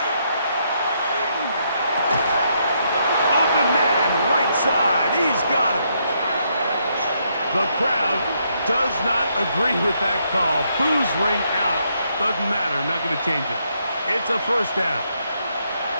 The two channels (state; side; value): inverted; both; correlation -0.75